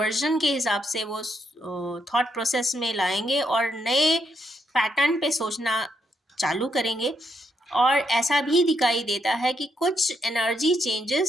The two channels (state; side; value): normal; both; correlation 0.77